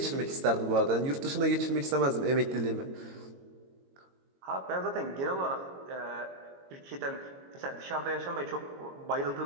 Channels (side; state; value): left; late; 22 ms